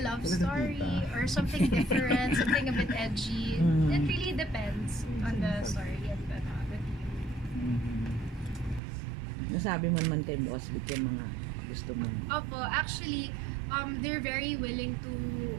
love story or something different, something a bit edgy. It really depends on the story and the theme. Nasabi mo naman kay Boss Vic yung mga gusto mo. Opo, actually they're very willing to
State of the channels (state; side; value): drops out; left; at 8.8 s